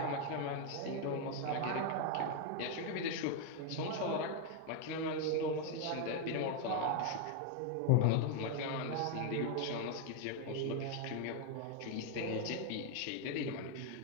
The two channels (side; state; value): both; different; correlation 0.01